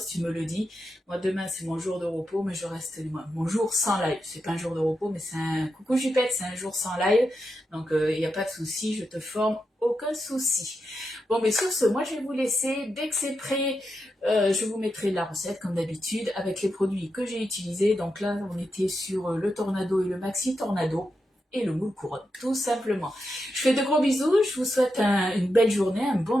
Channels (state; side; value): normal; both; correlation 0.87